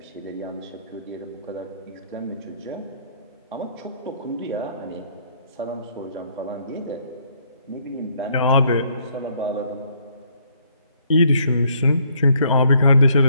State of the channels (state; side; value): inverted; both; correlation -0.67